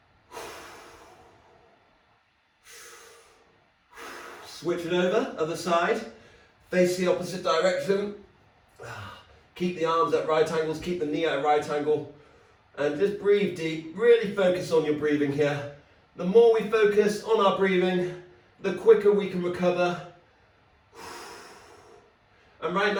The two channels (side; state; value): both; identical; correlation 1.00